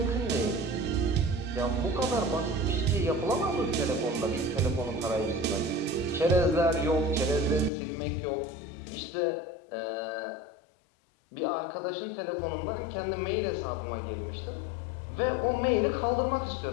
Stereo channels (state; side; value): drops out; right; at 7.7 s